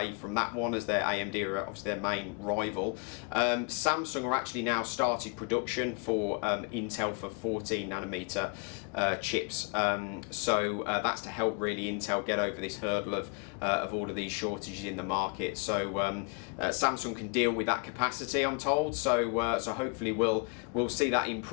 from that one, as their AMD are obviously their main rival. Samsung are actually now started production for Intel for 14nm chips. So that's to help really Intel get over this hurdle of all of these shortages in the market. So Samsung can deal with that capacity, I'm told. So hopefully we'll see that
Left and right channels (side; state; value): right; quieter; 34.1 dB